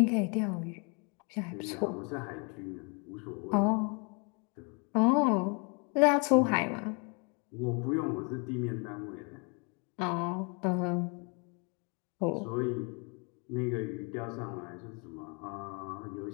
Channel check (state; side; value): quieter; right; 34.2 dB